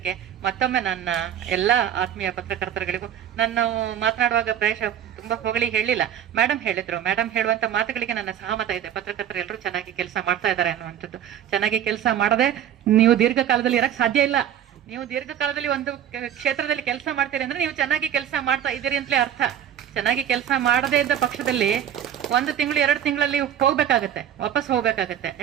ಮತ್ತೊಮ್ಮೆ ನನ್ನ ಎಲ್ಲಾ ಆತ್ಮೀಯ ಪತ್ರಕರ್ತರುಗಳಿಗೂ ನಾನು ಮಾತನಾಡುವಾಗ ಪ್ರಾಯಶಃ ತುಂಬಾ ಹೊಗಳಿ ಹೇಳಿಲ್ಲ. ಮೇಡಮ್ ಹೇಳಿದ್ರು. ಮೇಡಮ್ ಹೇಳುವಂತ ಮಾತುಗಳಿಗೆ ನನ್ನ ಸಹಮತ ಇದೆ. ಪತ್ರಕರ್ತರು ಎಲ್ಲರೂ ಚೆನ್ನಾಗಿ ಕೆಲಸ ಮಾಡ್ತಾ ಇದ್ದಾರೆ ಅನ್ನುವಂಥದ್ದು. ಚೆನ್ನಾಗಿ ಕೆಲಸ ಮಾಡದೆ ನೀವು ದೀರ್ಘಕಾಲದಲ್ಲಿ ಇರಕ್ ಸಾಧ್ಯ ಇಲ್ಲ. ನೀವು ದೀರ್ಘಕಾಲದಲ್ಲಿ ಒಂದು ಕ್ಷೇತ್ರದಲ್ಲಿ ಕೆಲಸ ಮಾಡ್ತೀರಿ ಅಂದ್ರೆ ನೀವು ಚೆನ್ನಾಗಿ ಕೆಲಸ ಮಾಡ್ತಾ ಇದ್ದೀರಿ ಅಂತಲೇ ಅರ್ಥ. ಚೆನ್ನಾಗಿ ಕೆಲಸ ಮಾಡದೇ ಇದ್ದ ಪಕ್ಷದಲ್ಲಿ 1 ತಿಂಗಳು 2 ತಿಂಗಳಲ್ಲಿ ವಾಪಸ್ ಹೋಗ್ಬೇಕಾಗತ್ತೆ.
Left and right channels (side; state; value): left; quieter; 10.3 dB